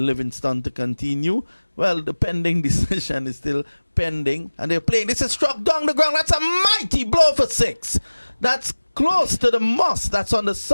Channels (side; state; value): both; inverted; correlation -1.00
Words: to continue. Well, the pending decision is still pending. And they're playing. This is struck down the ground. That's a mighty blow for 6. That's close to the moss. That's on the